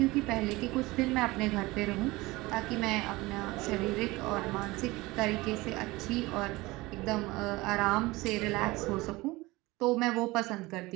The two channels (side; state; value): left; quieter; 21.1 dB